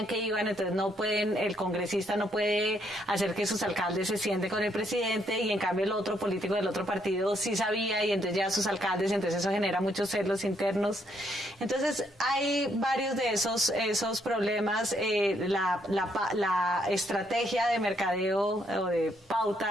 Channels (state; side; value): normal; both; correlation 0.72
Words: que iban, entonces no pueden, el congresista no puede hacer que sus alcaldes se sienten con el presidente y en cambio el otro político del otro partido sí sabía y entonces ya sus alcaldes, entonces eso genera muchos celos internos. Entonces hay varios de esos problemas. La estrategia de mercadeo o de